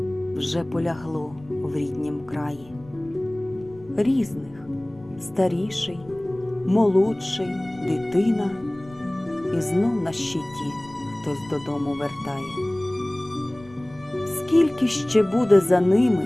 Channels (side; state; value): left; noise; rumble, 23 dB below the sound